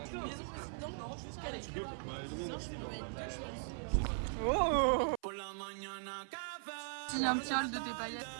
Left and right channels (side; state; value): left; silent; 51 dB below the other